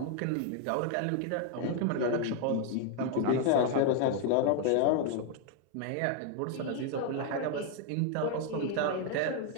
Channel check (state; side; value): different; both; correlation 0.01